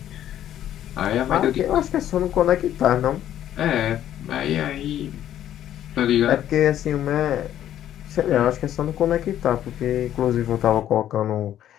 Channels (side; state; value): right; quieter; 11.5 dB